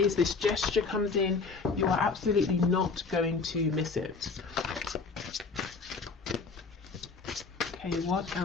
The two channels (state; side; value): quieter; right; 4.5 dB